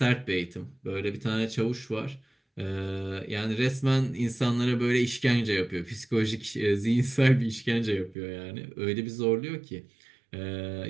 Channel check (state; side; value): drops out; left; at 8.2 s